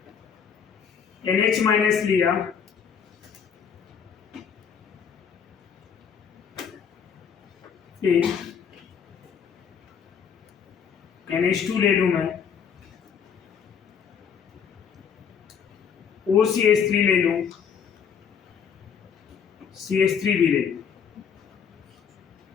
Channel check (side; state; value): right; quieter; 7.1 dB